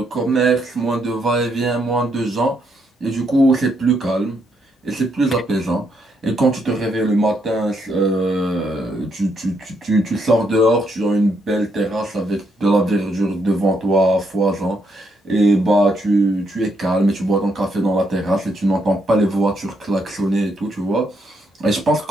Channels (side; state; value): both; normal; correlation 0.76